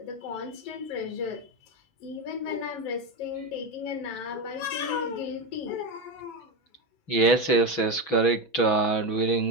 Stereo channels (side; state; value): right; late; 6.1 ms